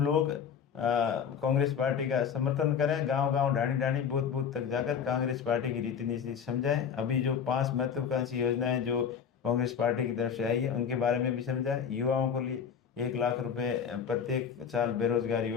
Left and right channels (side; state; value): right; quieter; 7.3 dB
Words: लोग कांग्रेस पार्टी का समर्थन करें, गांव गांव, ढाणी ढाणी, बूथ बूथ तक जाकर कांग्रेस पार्टी की रीति नीति समझाएं। अभी जो 5 महत्वाकांक्षी योजनाएं जो कांग्रेस पार्टी की तरफ से आई है उनके बारे में भी समझाएं। युवाओं को लिए 1 लाख रुपए प्रत्येक साल, बेरोजगार